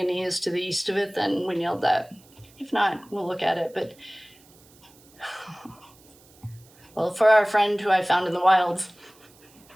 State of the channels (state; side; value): noise; right; hiss, 27 dB below the sound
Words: is to the east of it, then we nailed that. If not, we'll look at it. But, well, for our friend who I found in the wild,